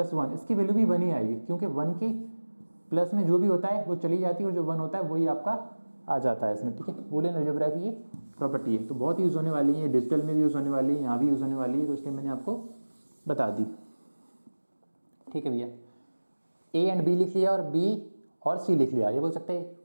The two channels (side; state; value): both; inverted; correlation -1.00